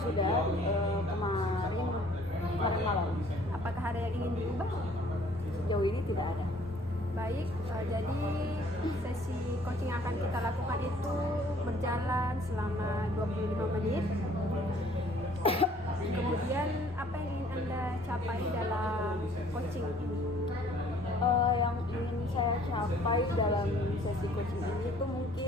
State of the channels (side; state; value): both; normal; correlation 0.57